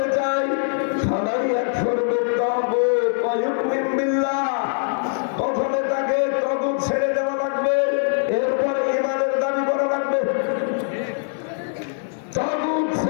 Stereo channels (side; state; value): right; silent; digital silence